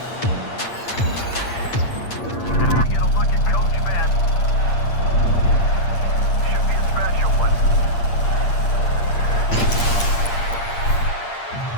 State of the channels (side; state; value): right; late; 8.6 ms